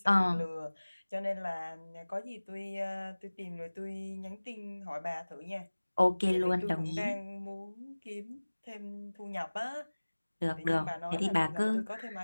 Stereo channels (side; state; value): both; inverted; correlation -1.00